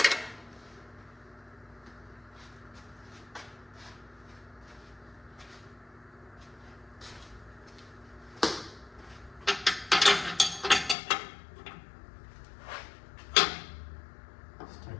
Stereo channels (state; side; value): drops out; right; at 11.0 s